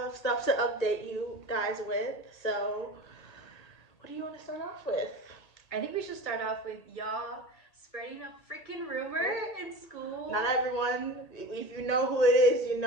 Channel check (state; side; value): late; right; 1.8 ms